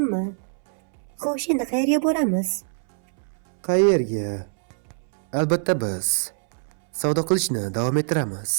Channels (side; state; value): left; silent; 63 dB below the other